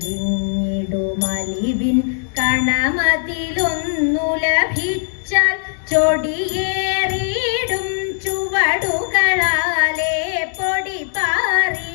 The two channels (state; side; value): silent; right; digital silence